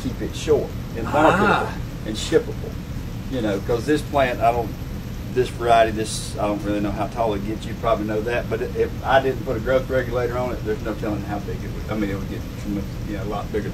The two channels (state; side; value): identical; both; correlation 1.00